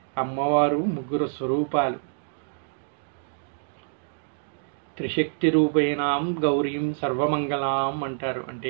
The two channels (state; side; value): silent; left; digital silence